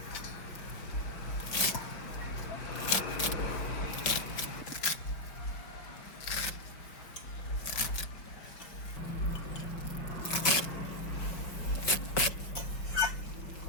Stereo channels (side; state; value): right; late; 5.3 ms